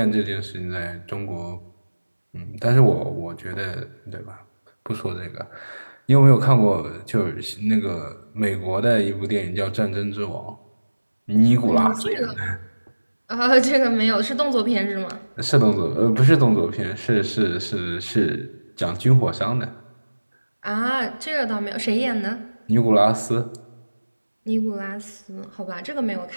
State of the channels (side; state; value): both; inverted; correlation -1.00